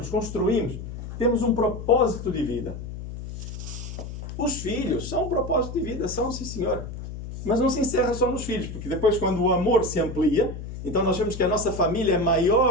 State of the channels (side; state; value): left; noise; hum, 9 dB below the sound